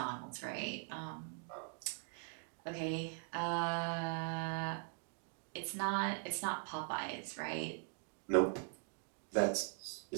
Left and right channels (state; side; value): silent; left; 50 dB below the other